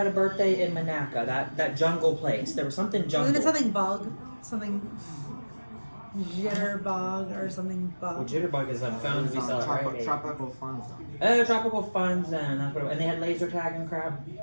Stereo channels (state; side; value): inverted; both; correlation -1.00